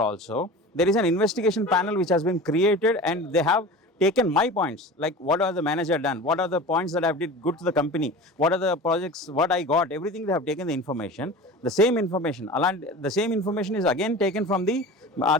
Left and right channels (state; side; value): normal; both; correlation 0.35